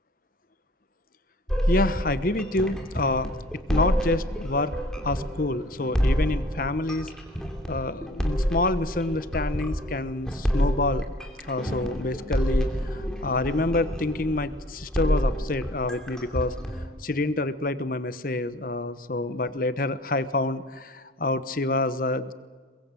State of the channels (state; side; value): normal; both; correlation 0.50